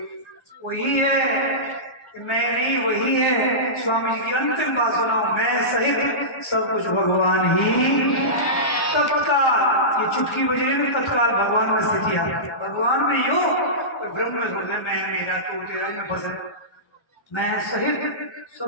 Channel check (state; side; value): late; right; 1.3 ms